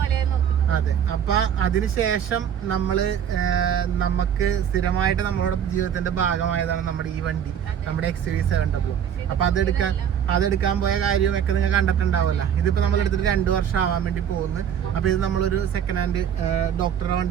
അതെ, അപ്പൊ അതിനുശേഷം നമുക്ക് സ്ഥിരമായിട്ട് നമ്മളുടെ ജീവിതത്തിന്റെ ഭാഗമായതാണ് നമ്മുടെ ഈ വണ്ടി, നമ്മുടെ XUV700. അപ്പൊ അതെടുക്കാൻ പോയ കാര്യമൊക്കെ നിങ്ങൾ കണ്ടിട്ടുണ്ടാവില്ല. ഇതിപ്പോ നമ്മൾ എടുത്തിട്ട് 2 വർഷം ആവാൻ വേണ്ടി പോകുന്നു. അപ്പൊ ഇത് നമ്മളൊരു സെക്കൻഡ് ഹാൻഡ് ഡോക്ടറുടെ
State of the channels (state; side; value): quieter; left; 8.8 dB